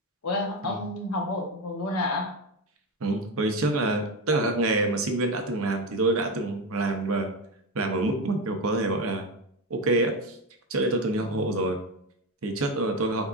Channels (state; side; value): normal; both; correlation 0.16